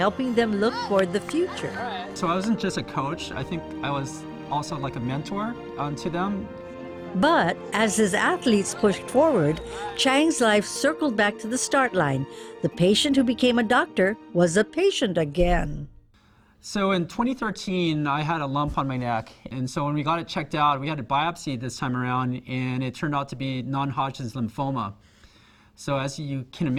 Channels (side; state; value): both; identical; correlation 1.00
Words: them look toward the future. So I wasn't just a coach, I think I was also like a mentor to them. But as his athletes pushed forward, Chang's life circled back to the start line. The patient who became a doctor was a patient again. So in 2013, I had a lump on my neck. And so when we got it checked out, we had a biopsy this time around, and it turned out to be non-Hodgkin's lymphoma. So as you can